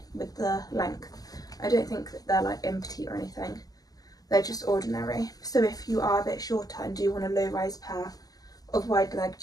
with the length. I don't think that they're like in petite or anything. They're just ordinary. So if you are a bit shorter and do want a low rise pair of wide leg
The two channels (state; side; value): late; right; 0.18 ms